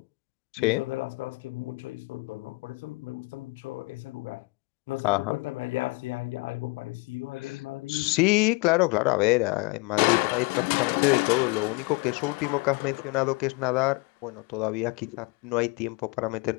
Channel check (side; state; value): right; quieter; 27.1 dB